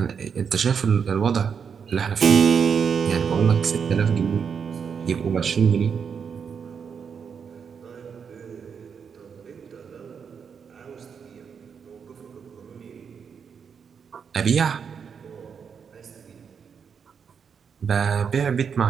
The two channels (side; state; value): left; quieter; 6.7 dB